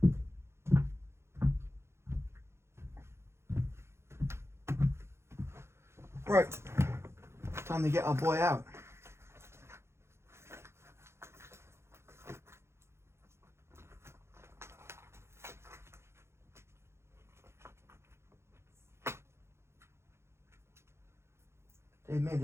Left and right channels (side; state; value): left; late; 0.13 ms